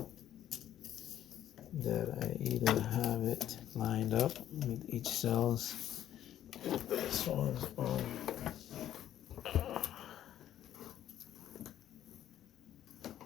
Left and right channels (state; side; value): quieter; right; 11.6 dB